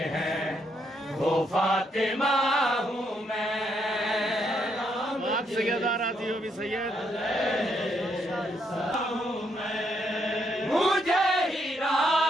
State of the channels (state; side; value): normal; both; correlation 0.75